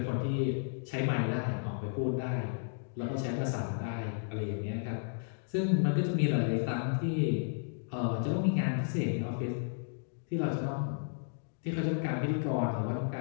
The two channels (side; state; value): right; silent; digital silence